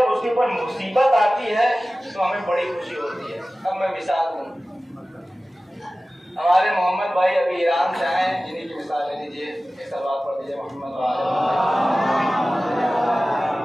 اس کے اوپر مصیبت آتی ہے تو ہمیں بڑی خوشی ہوتی ہے۔ اب میں مثال دوں، ہمارے محمد بھائی ابھی ایران سے آئے ہیں، جنہیں کی مثال لے لیجیے، ایک سلوات پڑھ دیجیے محمد بھائی۔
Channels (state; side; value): normal; both; correlation 0.96